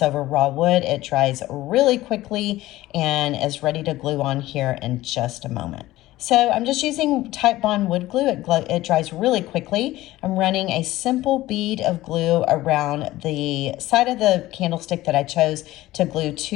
over raw wood. It dries really quickly and is ready to glue on here in just a moment. So I'm just using Type Bond wood glue. It dries really quickly. I'm running a simple bead of glue around the side of the candlestick that I chose to glue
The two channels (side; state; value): right; quieter; 16.7 dB